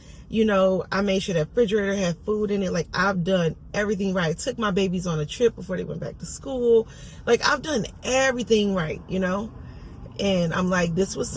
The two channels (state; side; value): identical; both; correlation 1.00